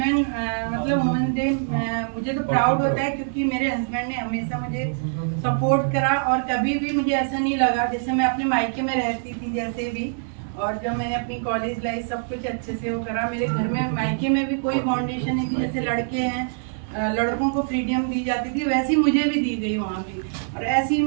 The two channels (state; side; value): silent; left; digital silence